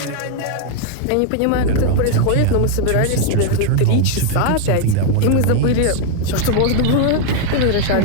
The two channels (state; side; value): different; both; correlation 0.00